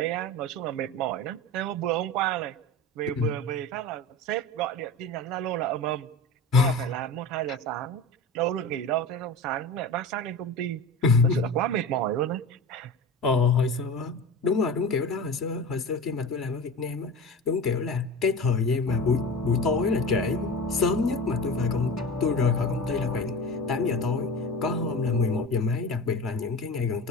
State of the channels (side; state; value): both; normal; correlation 0.31